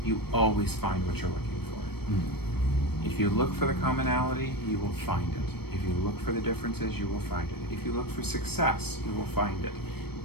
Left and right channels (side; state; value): right; late; 0.96 ms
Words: You always find what you're looking for. If you look for the commonality, you will find it. If you look for the differences, you will find it. If you look for success, you will find it.